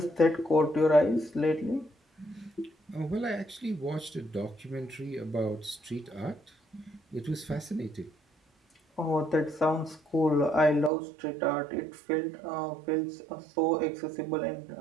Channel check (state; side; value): drops out; left; at 10.9 s